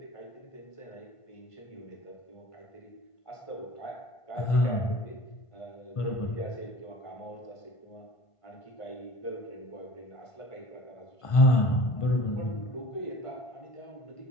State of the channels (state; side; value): late; right; 1.5 ms